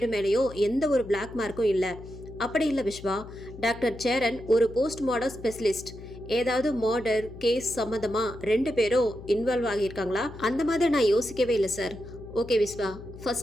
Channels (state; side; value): noise; left; hum, 15 dB below the sound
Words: மேலேயும் எந்த ஒரு பிளாக் மார்க்கும் இல்லை. அப்படி இல்லை விஸ்வா, டாக்டர் சேரன் ஒரு போஸ்ட்மார்டம் ஸ்பெஷலிஸ்ட். ஏதாவது மர்டர் கேஸ் சம்மந்தமாக 2 பேரும் இன்வால்வ் ஆகியிருக்காங்களா? அந்த மாதிரி நான் யோசிக்கவே இல்லை sir. Okay Viswa,